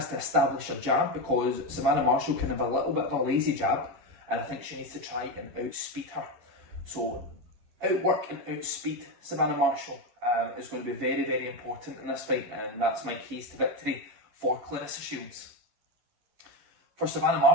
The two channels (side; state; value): left; late; 10 ms